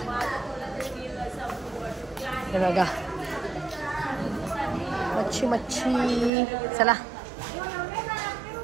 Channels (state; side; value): drops out; left; at 6.3 s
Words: हे बघा मच्छी. चला